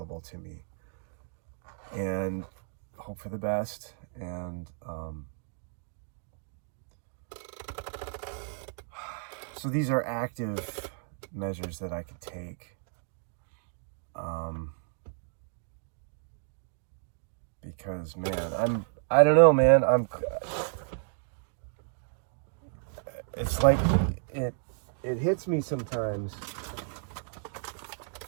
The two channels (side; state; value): left; silent; digital silence